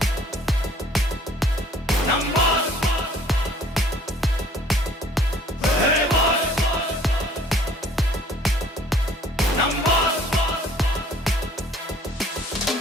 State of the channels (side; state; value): both; normal; correlation 0.56